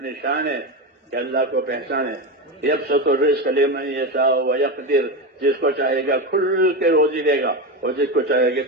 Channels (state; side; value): normal; both; correlation 0.17